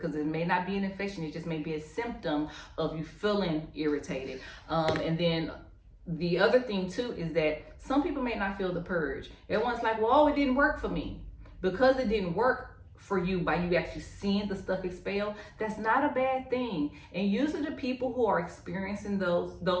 it may not be an infection. It just may be a symptom of you feeling irritated. And then the other thing too is that some people may not feel the purge. Everyone's like, well, it didn't work for me. Because it didn't work for you by you actually seeing the stuff expel, that's not a bad thing. And usually the people who are experiencing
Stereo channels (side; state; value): both; identical; correlation 1.00